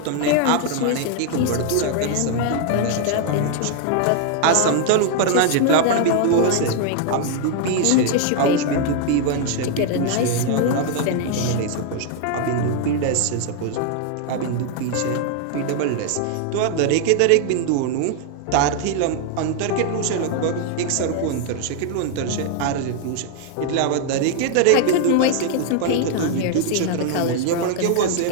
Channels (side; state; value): both; different; correlation 0.00